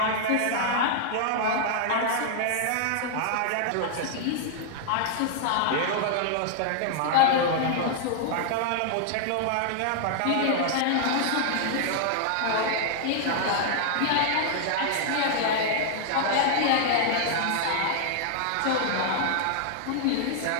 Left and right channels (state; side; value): different; both; correlation -0.01